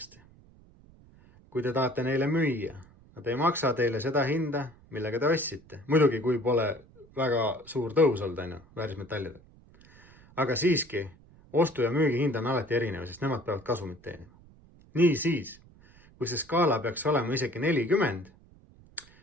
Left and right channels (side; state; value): right; noise; rumble, 25 dB below the sound